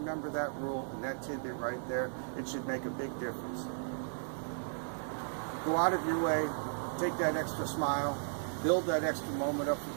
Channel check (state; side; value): silent; left; digital silence